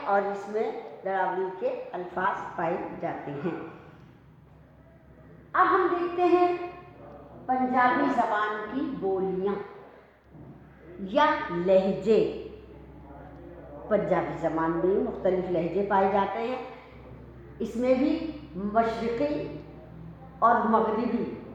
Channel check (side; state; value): both; identical; correlation 1.00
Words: इसमें दरावड़ी के अल्फाज पाए जाते हैं। अब हम देखते हैं पंजाबी ज़बान की बोलियां या लहजे। पंजाबी ज़बान में मुख्तलिफ लहजे पाए जाते हैं। इसमें भी मशरिक़ी और मगरिबी